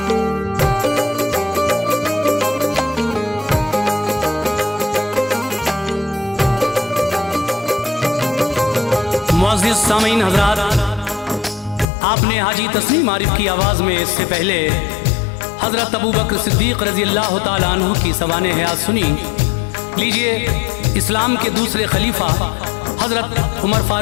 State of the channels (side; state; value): right; drops out; at 11.9 s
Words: मुअज़्ज़िज़ सामीन हज़रात, आपने हाजी तस्लीम आरिफ की आवाज़ में इससे पहले हज़रत अबू बकर सिद्दीक़ रज़ी अल्लाह तआला अन्हु की सवाने हयात सुनी। लीजिए, इस्लाम के दूसरे खलीफा हज़रत उमर